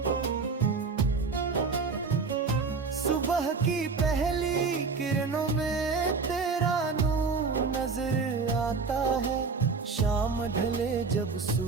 सुबह की पहली किरणों में तेरा नूर नजर आता है, शाम ढले जब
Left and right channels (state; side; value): quieter; left; 4.7 dB